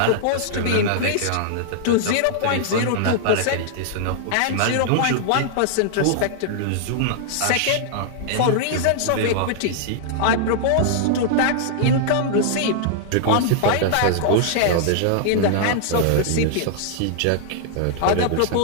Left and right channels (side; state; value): both; different; correlation -0.01